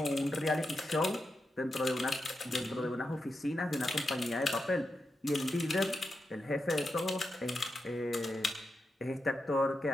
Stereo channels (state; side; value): normal; both; correlation 0.87